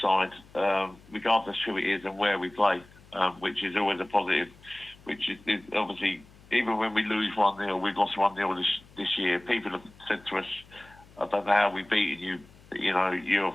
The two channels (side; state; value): left; noise; hum, 25 dB below the sound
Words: regardless who it is and where we play, which is always a positive. Which is obviously, even when we lose 1-0, we've lost 1-0 this year. People have said to us, "I don't know how we beaten you. You're a